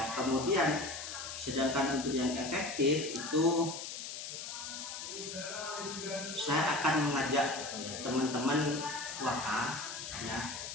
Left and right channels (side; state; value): left; noise; hiss, 7 dB below the sound